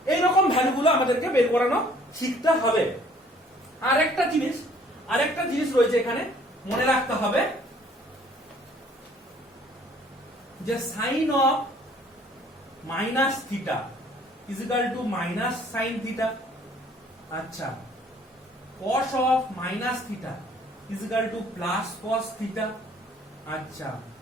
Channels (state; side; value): normal; both; correlation 0.58